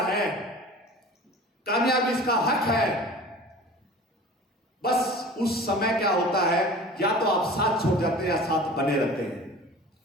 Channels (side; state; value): both; normal; correlation 0.40